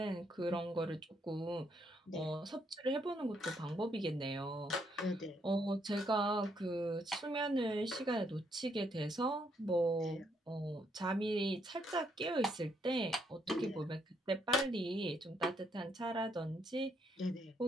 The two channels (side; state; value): both; normal; correlation 0.74